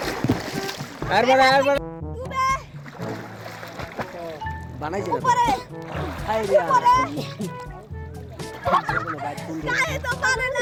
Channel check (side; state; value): both; identical; correlation 1.00